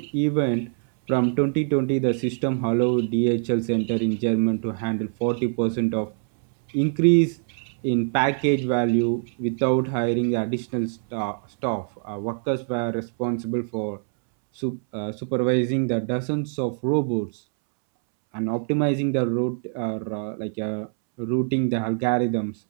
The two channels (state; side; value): silent; left; 62 dB below the other